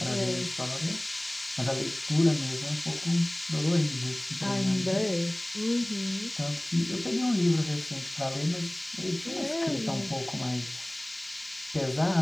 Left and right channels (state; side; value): noise; right; hiss, 28 dB below the sound